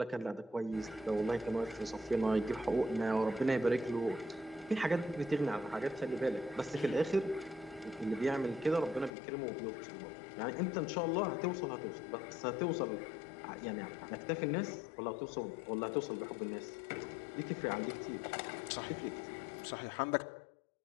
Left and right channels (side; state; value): right; drops out; at 9.1 s